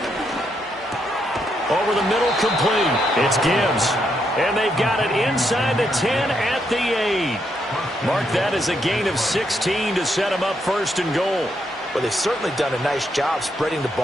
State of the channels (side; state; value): both; normal; correlation 0.78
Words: Over the middle, complete. It's Gibbs. And they've got it inside the 10 at the 8. Mark that as a gain of 16 to set him up first and goal. Well, they've certainly done a nice job spreading the